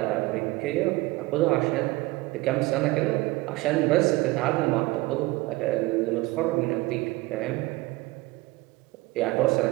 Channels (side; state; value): left; quieter; 20.9 dB